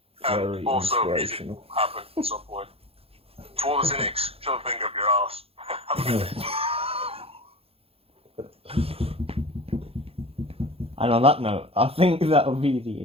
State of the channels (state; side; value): late; left; 0.28 ms